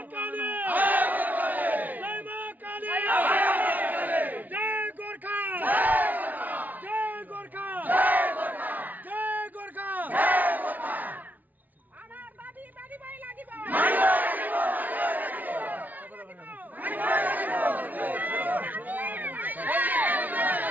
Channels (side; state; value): left; late; 0.078 ms